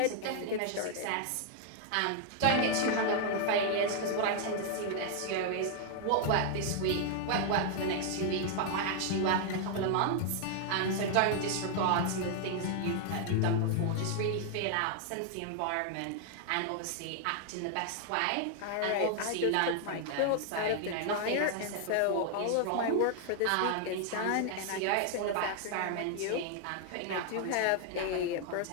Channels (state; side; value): different; both; correlation 0.00